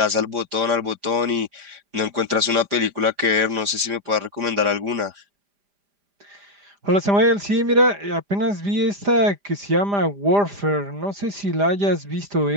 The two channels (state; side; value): late; left; 5.0 ms